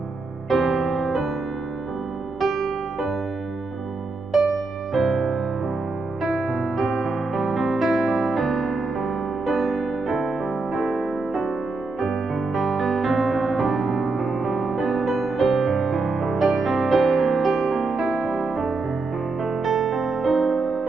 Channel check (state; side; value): quieter; left; 3.6 dB